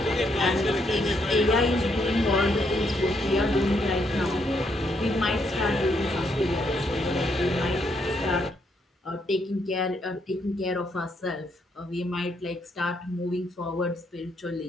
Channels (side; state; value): both; normal; correlation 0.75